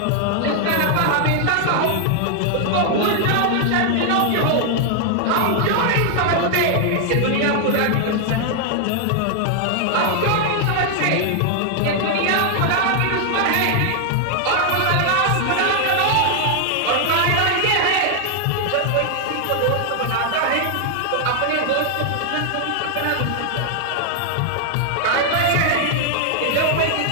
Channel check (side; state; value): both; different; correlation 0.00